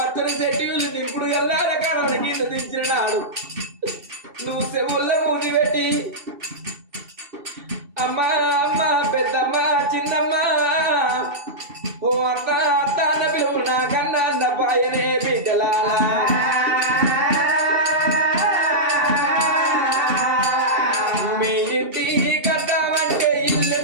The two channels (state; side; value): late; left; 2.7 ms